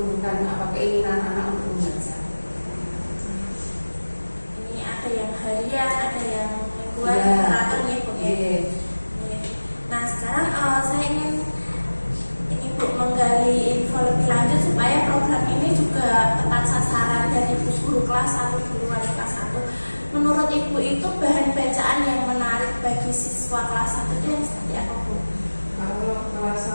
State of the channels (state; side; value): inverted; both; correlation -1.00